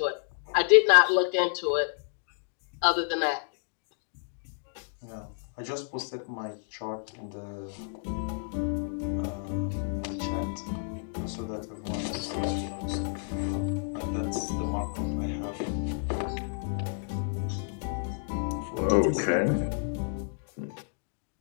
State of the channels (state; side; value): silent; right; digital silence